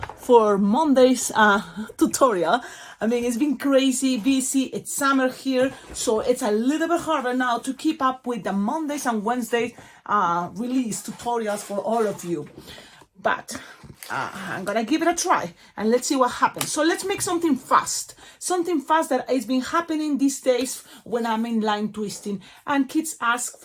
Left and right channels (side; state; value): both; identical; correlation 1.00